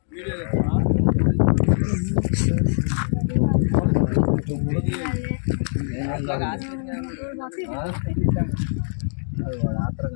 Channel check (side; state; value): right; silent; digital silence